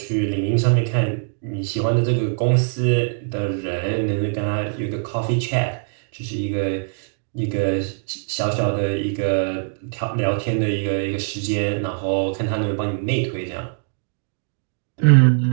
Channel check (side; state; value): left; silent; digital silence